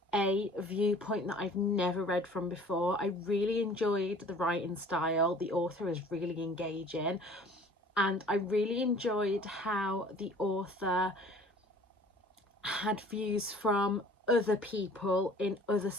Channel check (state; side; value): normal; both; correlation 0.50